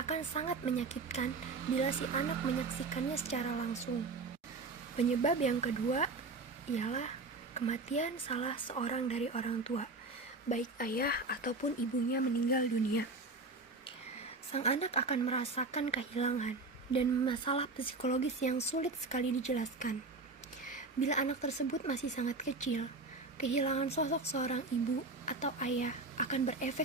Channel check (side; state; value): left; quieter; 3.6 dB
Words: sangat menyakitkan bila si anak menyaksikannya secara langsung. Penyebab yang kedua ialah kematian salah seorang dari orang tua, baik ayah ataupun ibunya meninggal dunia. Sang anak akan merasakan kehilangan dan masalah psikologis yang sulit sekali dijelaskan. Bila anak tersebut masih sangat kecil, kehilangan sosok seorang ibu atau ayah akan berefek